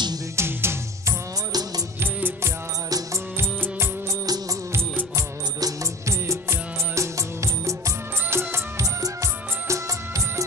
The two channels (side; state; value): both; normal; correlation 0.34